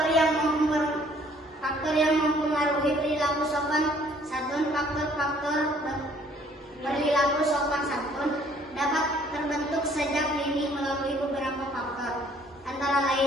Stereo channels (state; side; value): normal; both; correlation 0.60